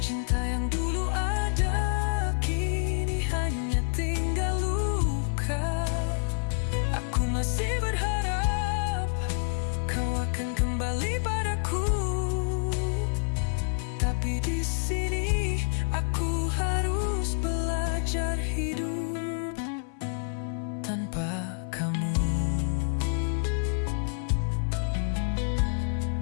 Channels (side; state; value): right; silent; 59 dB below the other